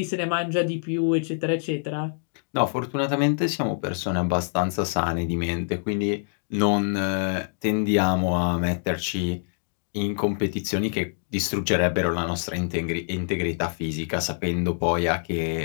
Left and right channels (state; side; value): silent; right; digital silence